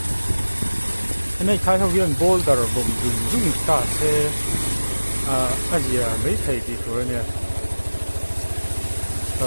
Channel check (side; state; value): both; inverted; correlation -1.00